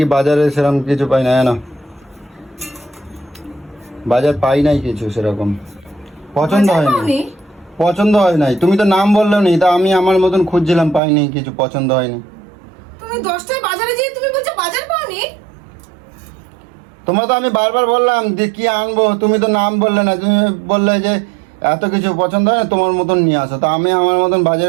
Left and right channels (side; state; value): left; drops out; at 11.0 s